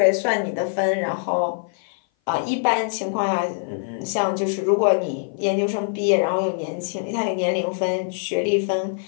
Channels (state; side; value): silent; right; 57 dB below the other